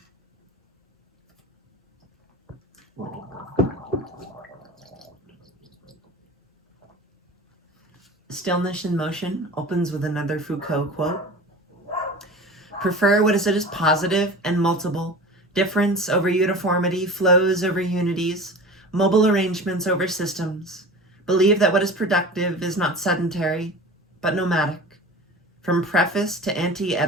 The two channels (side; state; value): both; normal; correlation 0.36